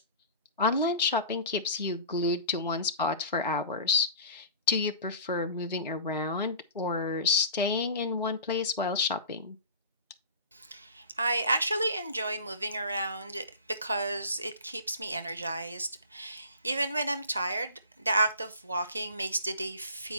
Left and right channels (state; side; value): inverted; both; correlation -0.38